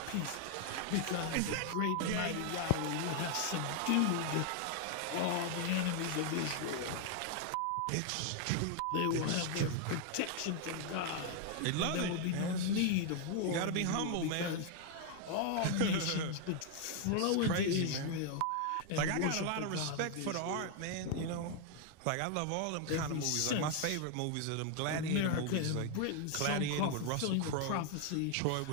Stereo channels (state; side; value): different; both; correlation 0.00